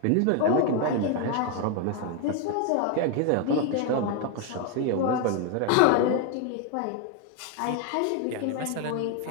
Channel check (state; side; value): different; both; correlation 0.01